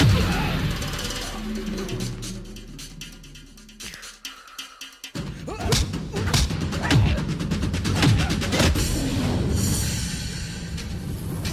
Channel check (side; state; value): both; identical; correlation 1.00